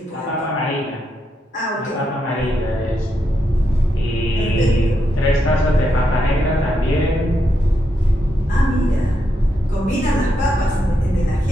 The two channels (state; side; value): normal; both; correlation 0.82